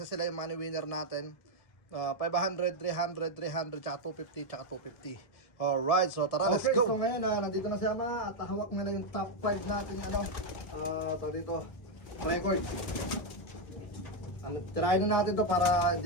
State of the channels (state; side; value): late; right; 1.6 ms